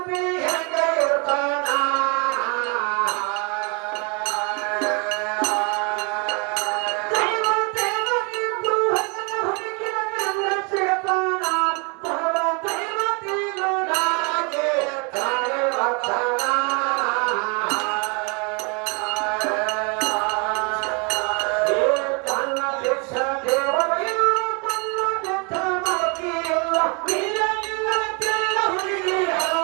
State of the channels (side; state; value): left; quieter; 33.4 dB